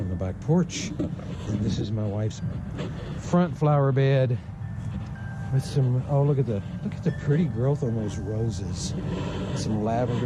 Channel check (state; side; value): identical; both; correlation 1.00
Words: the back porch. And this is my wife's front flower bed with some, oh, look at the pretty growth on those roses. Some